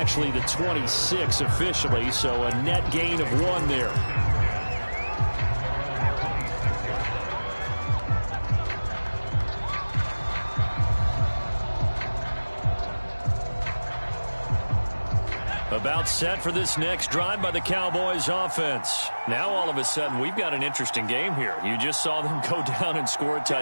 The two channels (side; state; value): both; inverted; correlation -1.00